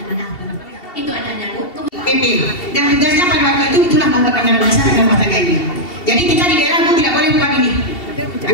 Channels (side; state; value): right; late; 2.7 ms